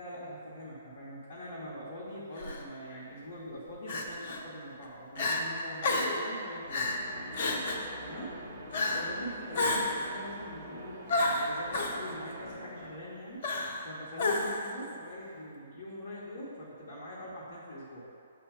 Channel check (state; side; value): inverted; both; correlation -0.59